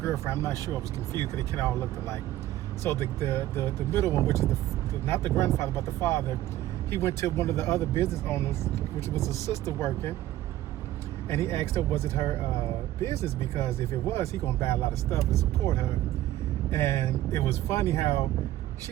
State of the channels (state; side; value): quieter; left; 14.6 dB